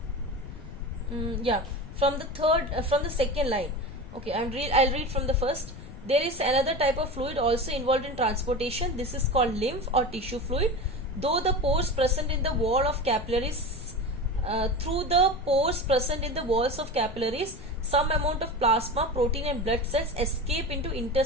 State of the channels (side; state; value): left; noise; rumble, 14 dB below the sound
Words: from the second line. Okay, I'll read from the first. There is another type of fluid also involved in transportation. This is called lymph or tissue fluid. Though the pores present in the wall of capillaries, through the pores present in the walls of capillaries, some amount of plasma, protein and blood cells escape into